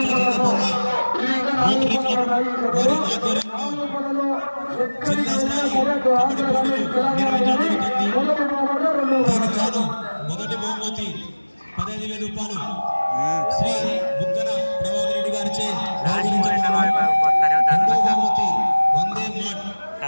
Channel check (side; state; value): both; inverted; correlation -1.00